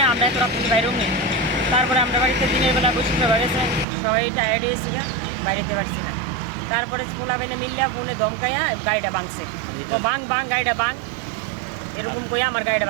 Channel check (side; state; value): left; drops out; at 3.9 s